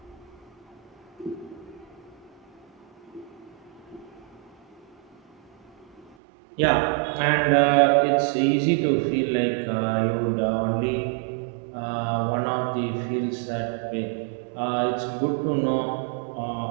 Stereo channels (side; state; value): left; drops out; at 6.2 s